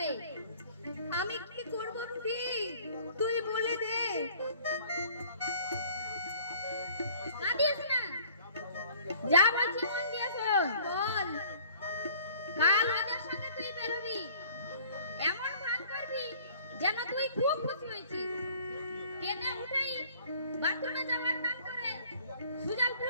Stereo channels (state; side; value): inverted; both; correlation -0.53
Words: আমি কি করব বুঝি, তুই বলে দে। কাঁদিস না, যা বলছি মন দিয়ে শোন। বল, কাল ওদের সঙ্গে তুই বেরোবি, এমন ভান করবি যেন তুই খুব খুশি হয়েছিস। ট্রেনে উঠেই বাথরুমে যাওয়ার নাম করে